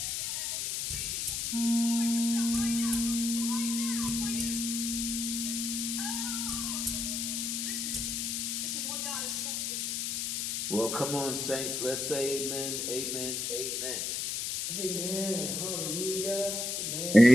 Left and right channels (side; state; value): left; noise; hiss, 1 dB below the sound